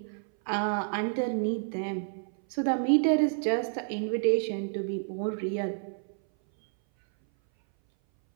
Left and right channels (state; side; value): silent; left; 58 dB below the other